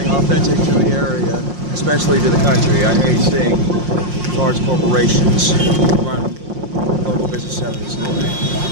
authentic to the area, especially to the country. I hate seeing large corporations run local business out of the store.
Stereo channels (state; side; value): late; left; 5.6 ms